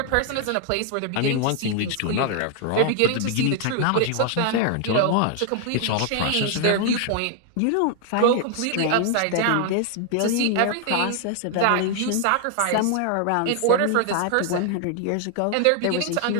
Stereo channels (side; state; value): both; different; correlation 0.00